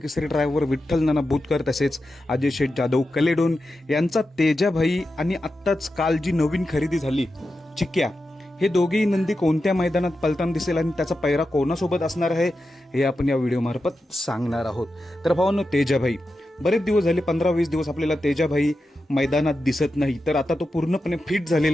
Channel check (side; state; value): both; normal; correlation 0.90